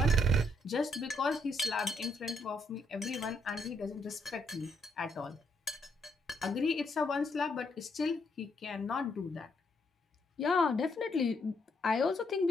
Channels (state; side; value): normal; both; correlation 0.74